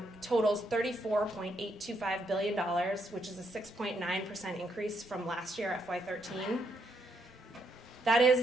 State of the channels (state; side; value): normal; both; correlation 0.76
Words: totals $34.825 billion, which is a 6.9% increase from last year, FY13. That